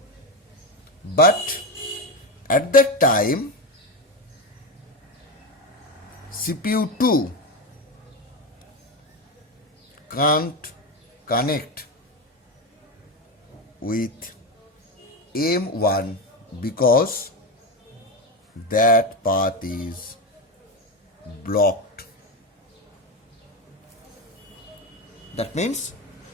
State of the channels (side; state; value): both; normal; correlation 0.16